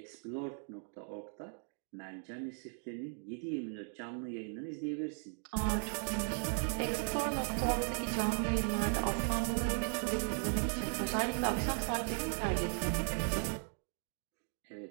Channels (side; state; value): left; silent; 53 dB below the other